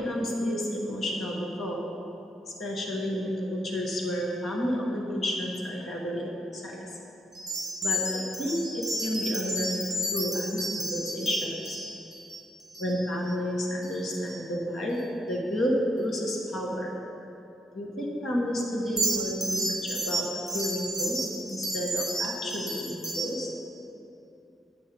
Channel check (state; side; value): normal; both; correlation 0.75